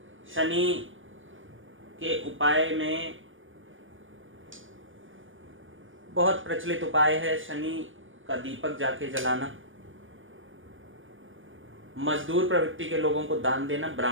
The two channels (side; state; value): left; late; 0.58 ms